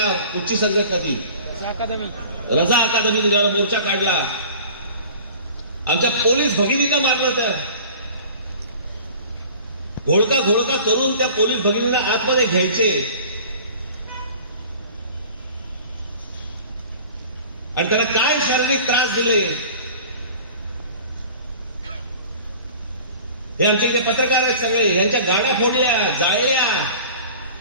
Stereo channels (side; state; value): both; inverted; correlation -0.43